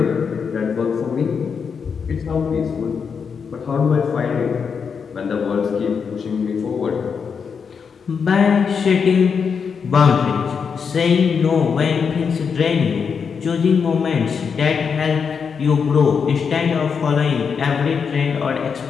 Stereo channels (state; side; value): quieter; right; 6.2 dB